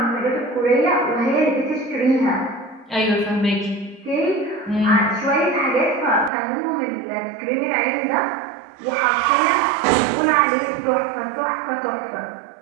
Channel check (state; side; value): drops out; left; at 6.3 s